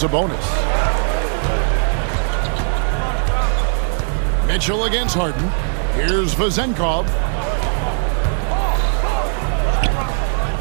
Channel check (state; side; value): silent; left; digital silence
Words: Mitchell against Harden. Here's Vezenkov.